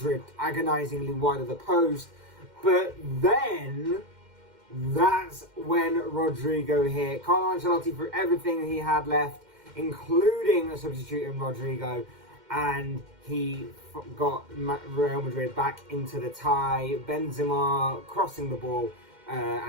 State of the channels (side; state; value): left; late; 2.1 ms